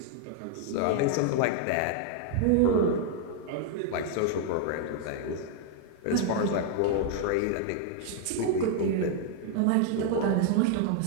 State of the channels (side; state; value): both; different; correlation 0.00